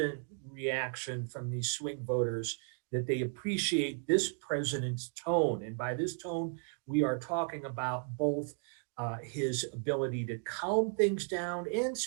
reaction from these swing voters that they appreciate this president's tone. And by this tone, we are talking about both his ability to calm things down and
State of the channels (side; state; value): left; silent; 55 dB below the other